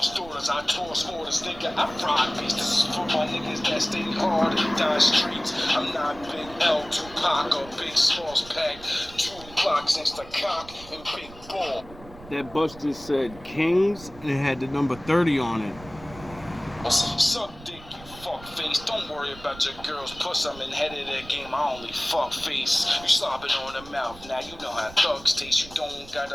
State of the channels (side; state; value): right; noise; rumble, 18 dB below the sound